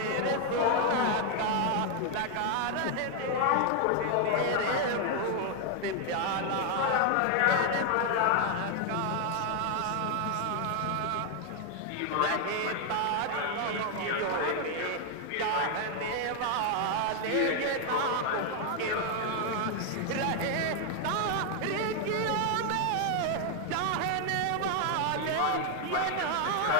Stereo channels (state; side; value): different; both; correlation 0.00